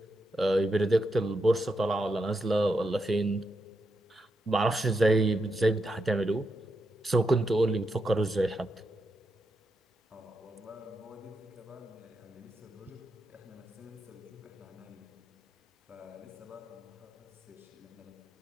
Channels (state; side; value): normal; both; correlation 0.84